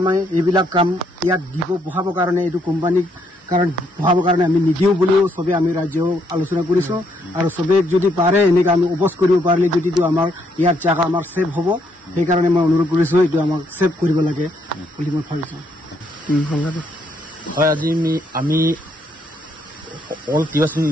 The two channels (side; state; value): both; normal; correlation 0.73